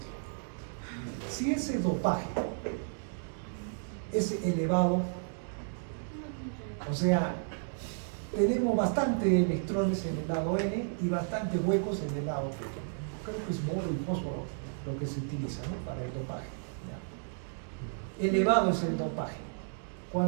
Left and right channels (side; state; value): left; silent; digital silence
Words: Si ese dopaje es elevado, o sea, tenemos bastante electrones en el lado N y bastante huecos en el lado P. Creo que es boro y fósforo lo que se utiliza, ¿no? Para el dopaje, ¿ya? Elevado es el dopaje.